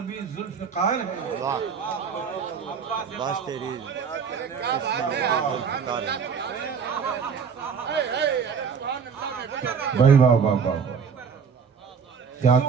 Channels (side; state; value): left; quieter; 6.4 dB